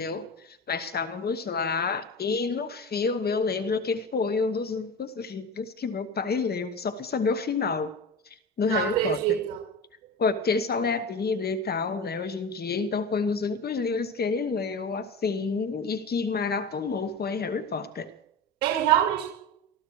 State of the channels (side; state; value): both; normal; correlation 0.27